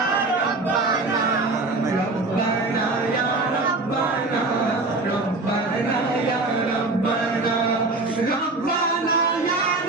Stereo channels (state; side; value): quieter; left; 3.3 dB